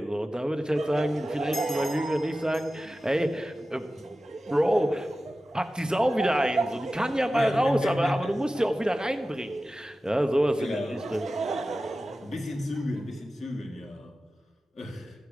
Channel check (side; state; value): both; normal; correlation 0.95